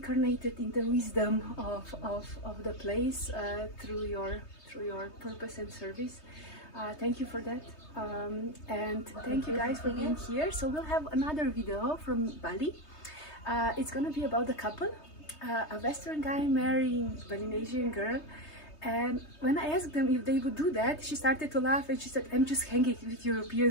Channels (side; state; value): right; late; 3.2 ms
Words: in the wisdom of the place through your purpose and service. Thank you for that, and thank you guys for being here. So we'll have another video from Bali. It's gonna be about a couple, a Western guy marrying a Balinesian girl. And when I asked them if they would do that, she started to laugh and she said, I'm just hanging with